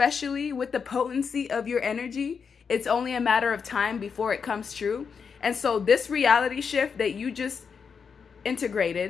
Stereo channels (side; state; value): right; quieter; 6.1 dB